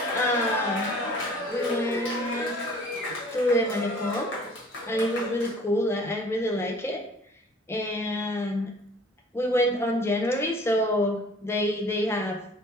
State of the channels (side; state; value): both; normal; correlation 0.50